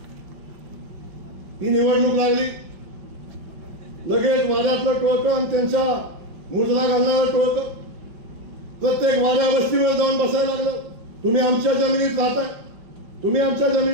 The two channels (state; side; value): late; left; 5.8 ms